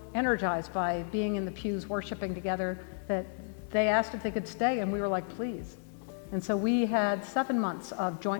energized by being in the pews worshiping together that they asked if they could stay, and we were like, please. And so we had 7 months of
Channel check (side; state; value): right; silent; digital silence